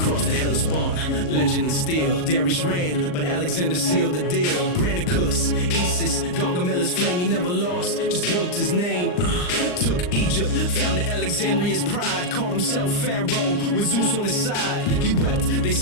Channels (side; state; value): right; late; 39 ms